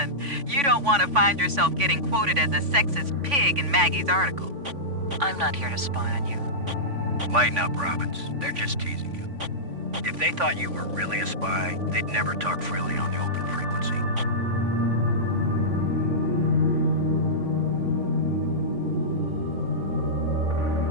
You don't want to find yourself getting quoted as a sexist pig in Maggie's article. I'm not here to spy on you. Lighten up, Robbins. They're just teasing you. If they thought you were really a spy, they'd never talk freely on the open frequency.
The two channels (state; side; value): late; left; 3.5 ms